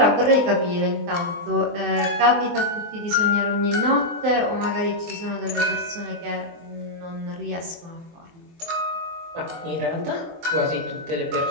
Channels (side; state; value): left; late; 23 ms